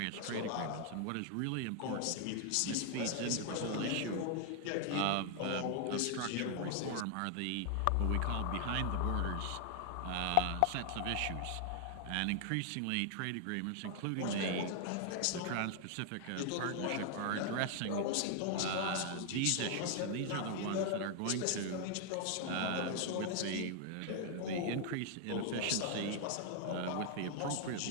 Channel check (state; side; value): different; both; correlation 0.00